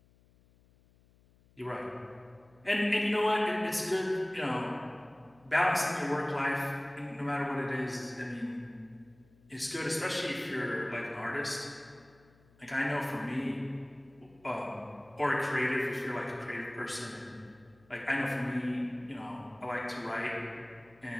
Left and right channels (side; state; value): left; noise; hum, 29 dB below the sound